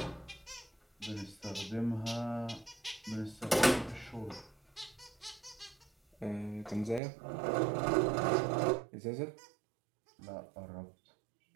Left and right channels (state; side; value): drops out; left; at 7.0 s